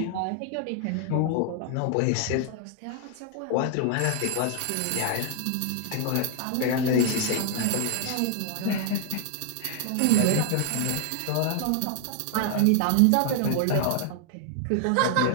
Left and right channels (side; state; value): both; different; correlation 0.00